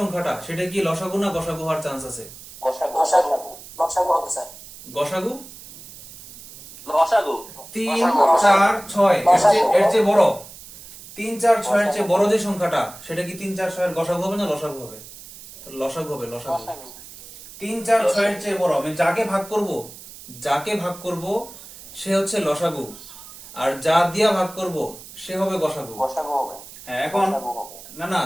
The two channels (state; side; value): noise; right; hiss, 17 dB below the sound